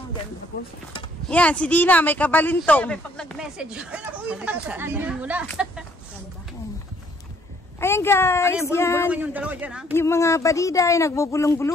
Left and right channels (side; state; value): both; normal; correlation 0.64